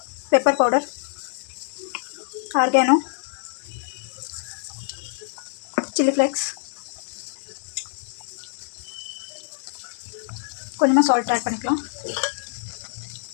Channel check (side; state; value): right; silent; digital silence